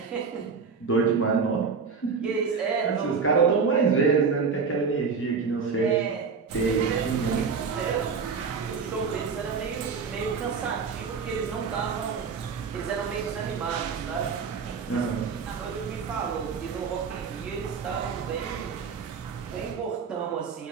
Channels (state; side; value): quieter; left; 5.5 dB